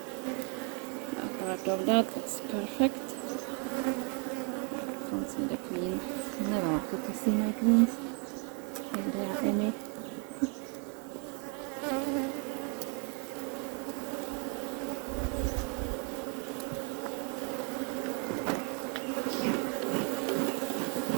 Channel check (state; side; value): quieter; left; 36.1 dB